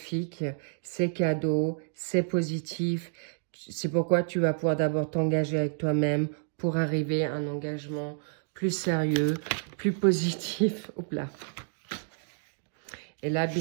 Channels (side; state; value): left; silent; digital silence